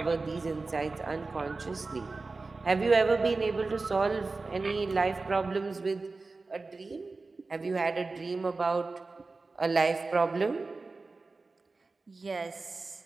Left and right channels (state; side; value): quieter; left; 3.7 dB